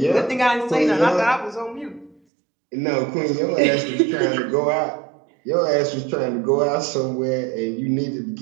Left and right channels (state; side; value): drops out; left; at 2.2 s